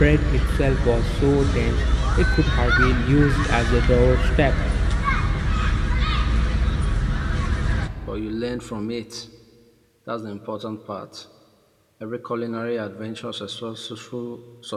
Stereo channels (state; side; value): identical; both; correlation 1.00